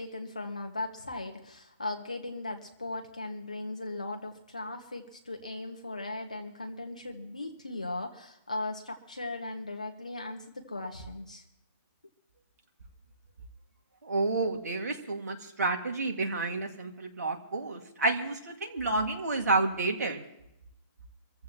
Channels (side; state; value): both; inverted; correlation -0.58